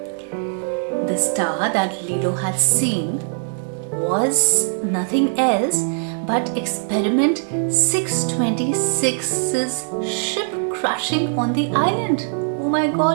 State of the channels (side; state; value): left; silent; digital silence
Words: The star that Lilo had seen was nothing else but Experiment 626's ship crashing on the island. Oh my